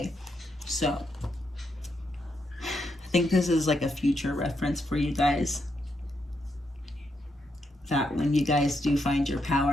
So, I think this is like a future reference for you guys. That when you guys do find your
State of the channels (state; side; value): normal; both; correlation 0.80